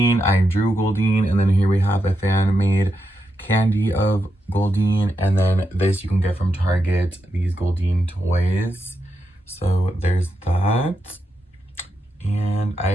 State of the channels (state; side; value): normal; both; correlation 0.85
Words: I drew Goldeen. And then here we have a fan-made candy of Goldeen. And then this you can get from Target, these Goldeen toys. So there's that. And I